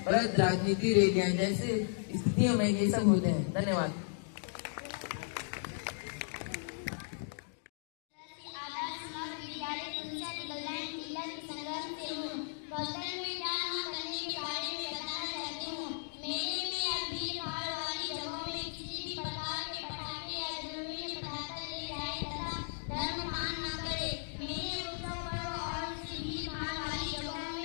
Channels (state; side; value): silent; right; digital silence